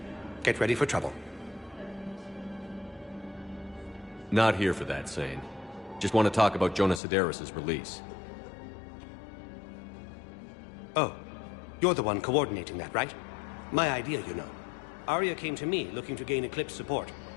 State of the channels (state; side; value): drops out; right; at 7.0 s